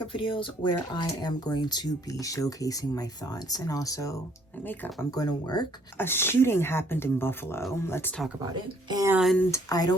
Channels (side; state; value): both; normal; correlation 0.63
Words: videos where I am going to be showcasing my thoughts and also my makeup. I'm going to work. A shooting happened in Buffalo. Let's talk about it. And I